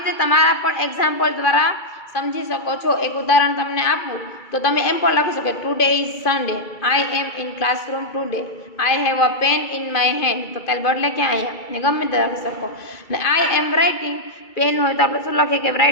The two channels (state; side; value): late; right; 2.3 ms